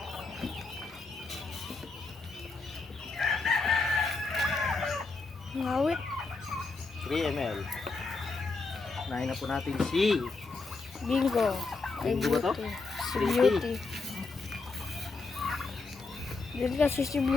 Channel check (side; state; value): right; quieter; 3.9 dB